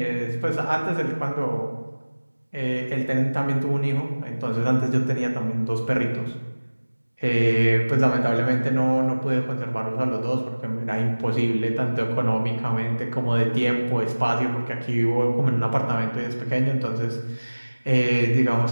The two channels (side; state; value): both; inverted; correlation -1.00